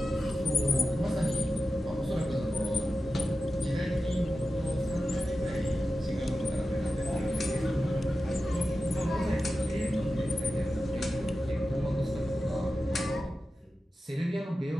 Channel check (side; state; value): both; normal; correlation 0.93